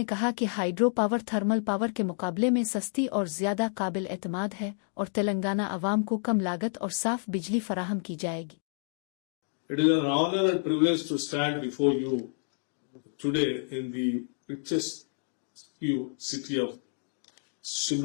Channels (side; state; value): right; silent; digital silence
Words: कहा कि हाइड्रो पावर थर्मल पावर के मुकाबले में सस्ती और ज़्यादा काबिल एतमाद है और तेलंगाना अवाम को कम लागत और साफ बिजली फराहम की जाएगी। It is an honor and privilege to stand before you today in the richest city of